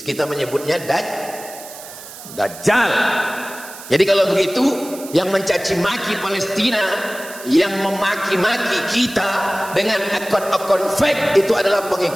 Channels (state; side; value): noise; right; hiss, 15 dB below the sound